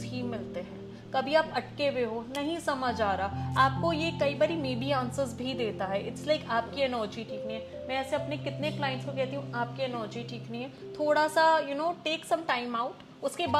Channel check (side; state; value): both; identical; correlation 1.00